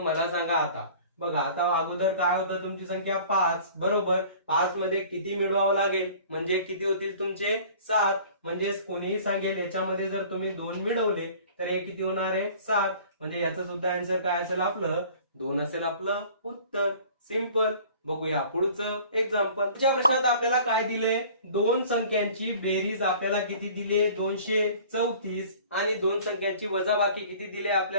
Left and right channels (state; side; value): inverted; both; correlation -0.47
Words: सांगा आता बघा, आता अगोदर काय होतं, तुमची संख्या 5. बरोबर, 5 मध्ये किती मिळवावं लागेल, म्हणजे किती होतील तुमचे 7. म्हणजेच कोणीही सांगेल याच्यामध्ये जर तुम्ही 2 मिळवले तर हे किती होणार आहे, 7. म्हणजे याचं सुद्धा आन्सर काय असेल, आपलं 2 असेल आपलं उत्तर. सिंपल. बघूया पुढचं एक्झाम्पल. पुढच्या प्रश्नात आपल्याला काय दिले, दोन संख्यांची बेरीज आपल्याला किती दिली, 234. आणि दोन संख्यांची वजाबाकी किती दिली